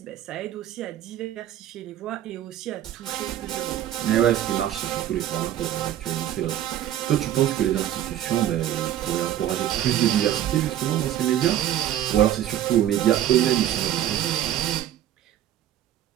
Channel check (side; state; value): left; quieter; 11.9 dB